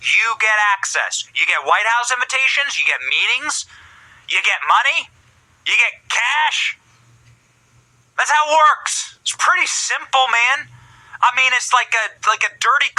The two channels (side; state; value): both; identical; correlation 1.00